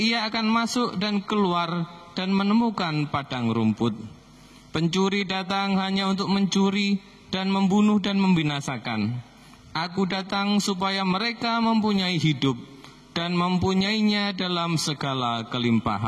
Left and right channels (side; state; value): both; identical; correlation 1.00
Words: akan masuk dan keluar dan menemukan padang rumput. Pencuri datang hanya untuk mencuri dan membunuh dan membinasakan. Aku datang supaya mereka mempunyai hidup dan mempunyainya dalam segala